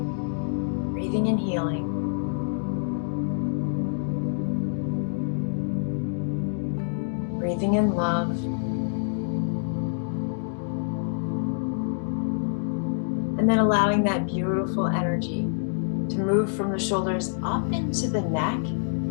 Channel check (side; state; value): right; silent; digital silence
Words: Breathing and healing. Breathing in love. And then allowing that beautiful energy to move from the shoulders up into the neck,